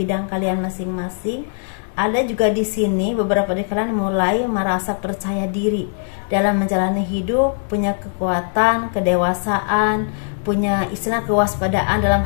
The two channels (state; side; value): silent; right; digital silence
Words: kalian masing-masing. Ada juga di sini beberapa dari kalian mulai merasa percaya diri dalam menjalani hidup, punya kekuatan, kedewasaan, punya kewaspadaan dalam